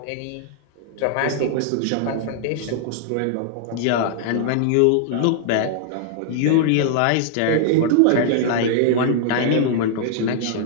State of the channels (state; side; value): different; both; correlation -0.01